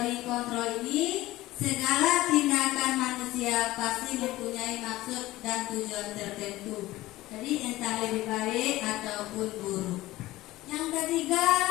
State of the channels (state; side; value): quieter; right; 17.4 dB